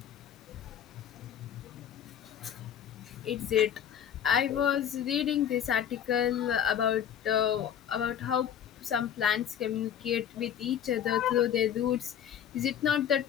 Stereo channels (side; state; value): right; quieter; 9.4 dB